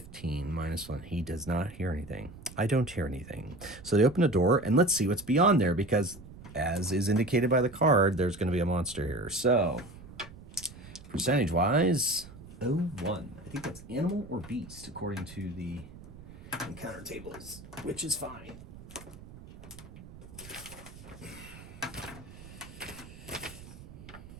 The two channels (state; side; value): noise; right; rumble, 17 dB below the sound